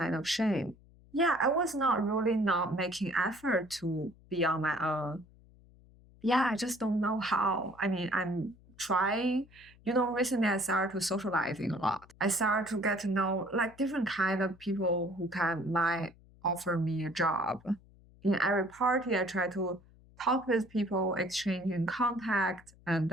of shame. Yeah, I was not making effort to be on my own. Yeah, I just don't know how. I mean, I'm trying. Recently I started to socializing a lot. I started to get to know like different kind of people who might offer me a job. In every party, I try to talk with people, exchanging contact, and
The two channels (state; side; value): noise; left; hum, 26 dB below the sound